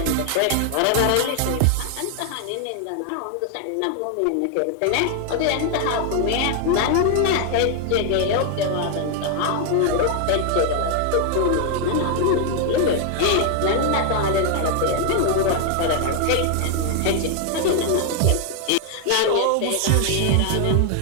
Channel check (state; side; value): different; both; correlation 0.00